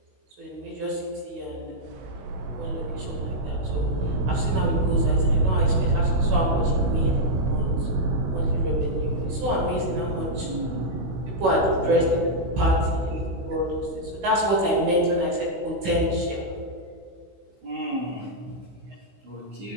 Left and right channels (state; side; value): late; left; 16 ms